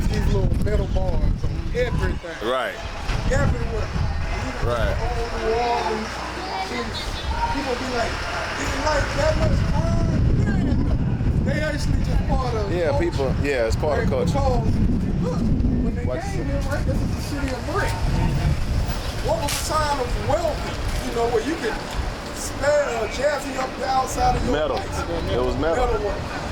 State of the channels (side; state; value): both; identical; correlation 1.00